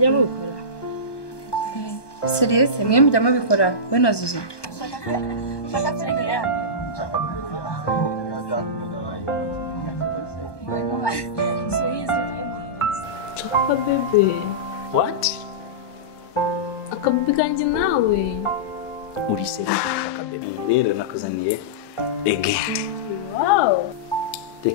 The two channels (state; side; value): late; right; 1.2 ms